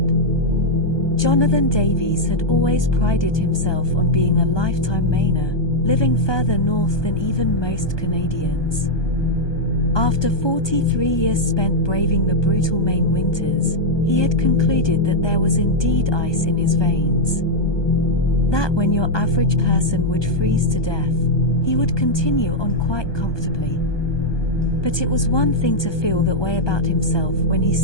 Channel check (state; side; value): late; right; 1.2 ms